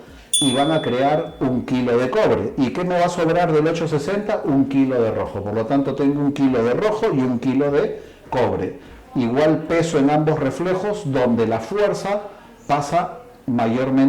y van a crear 1 kilo de cobre. ¿Y qué me va a sobrar del 8,60? 1 kilo de rojo. Por lo tanto, tengo 1 kilo de rojo y 1 kilo de cobre. Igual peso en ambos reflejos, donde la fuerza pasa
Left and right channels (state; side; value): identical; both; correlation 1.00